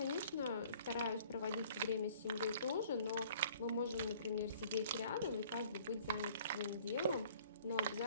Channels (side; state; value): both; inverted; correlation -0.53